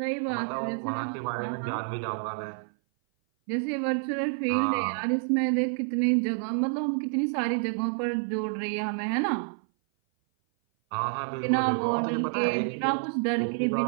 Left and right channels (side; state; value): left; silent; 56 dB below the other